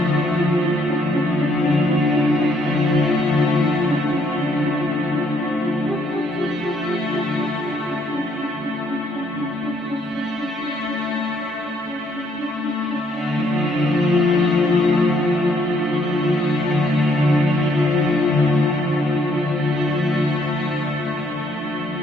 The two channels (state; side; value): normal; both; correlation 0.68